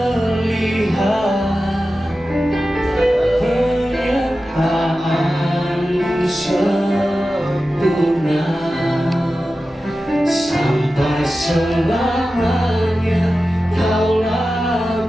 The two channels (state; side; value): normal; both; correlation 0.93